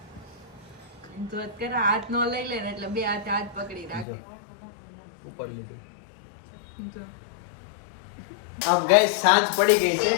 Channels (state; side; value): drops out; right; at 4.0 s